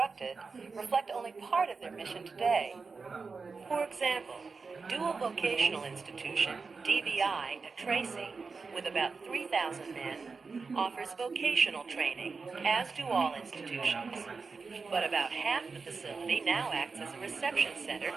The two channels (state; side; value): quieter; left; 4.6 dB